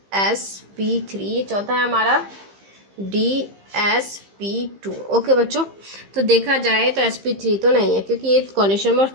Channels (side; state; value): left; late; 15 ms